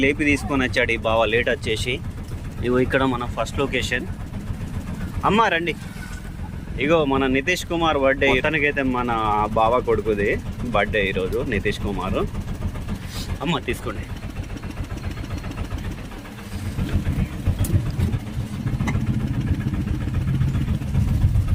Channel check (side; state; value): both; identical; correlation 1.00